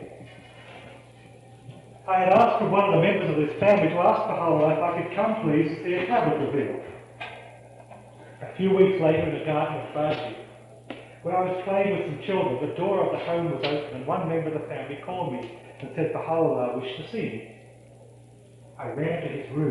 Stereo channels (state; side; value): identical; both; correlation 1.00